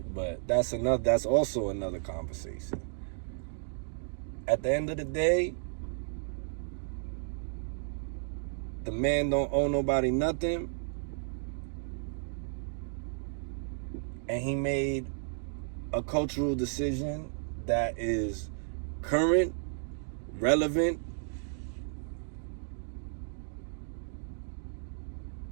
But that's also another conversation. At the end of the day, the man don't owe nobody nothing. And he made a cultural decision that is current, relevant,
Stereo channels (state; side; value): silent; left; digital silence